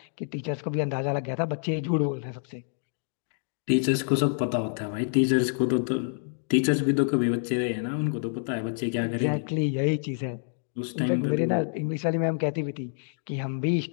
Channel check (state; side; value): silent; right; digital silence